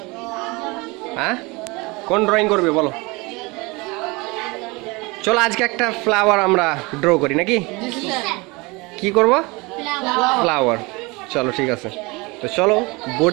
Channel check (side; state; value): left; quieter; 25.4 dB